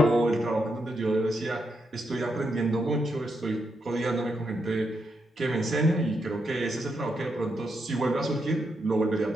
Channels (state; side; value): normal; both; correlation 0.81